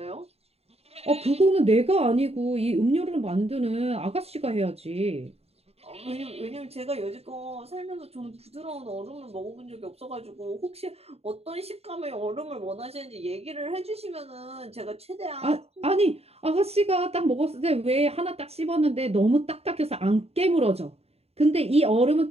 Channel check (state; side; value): late; left; 0.30 ms